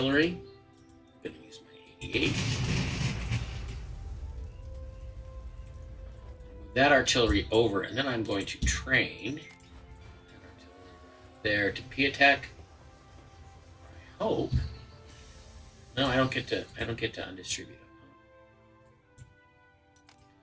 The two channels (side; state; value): both; identical; correlation 1.00